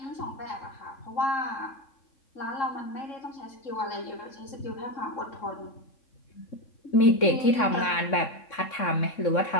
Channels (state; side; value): late; right; 3.6 ms